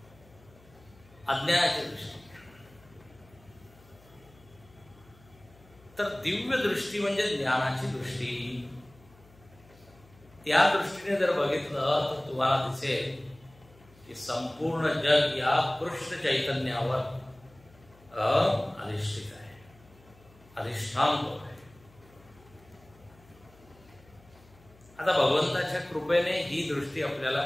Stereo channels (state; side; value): noise; left; hum, 26 dB below the sound